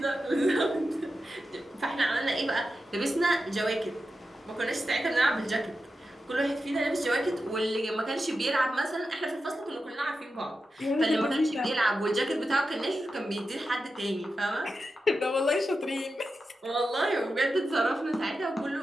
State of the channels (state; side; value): normal; both; correlation 0.90